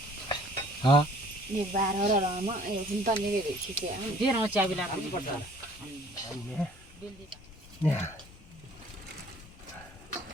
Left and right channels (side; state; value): both; normal; correlation 0.55